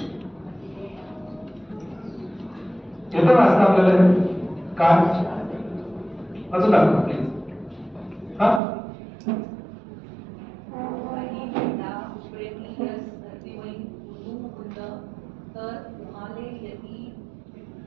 येतं वाचता आपल्याला काय अजून दाखवा प्लीज. हा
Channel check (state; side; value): drops out; left; at 8.6 s